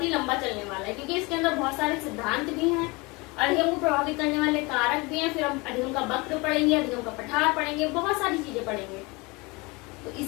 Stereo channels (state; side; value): quieter; right; 25.8 dB